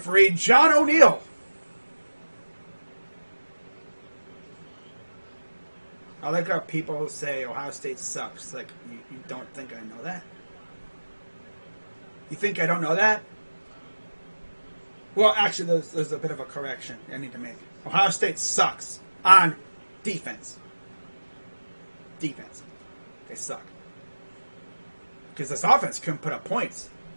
John O'Neill. I like how people say Ohio State sucks. Like, you don't think I know that? You think I don't know that? Well, actually, there's a bit of a correction I need to make. Ohio State sucks on defense. Defense. They suck. Because this offense couldn't put up points.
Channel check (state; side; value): inverted; both; correlation -1.00